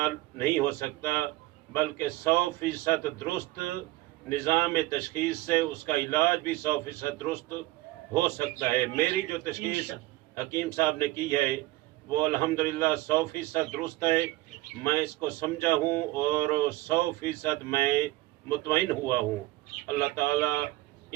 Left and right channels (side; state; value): left; quieter; 18.4 dB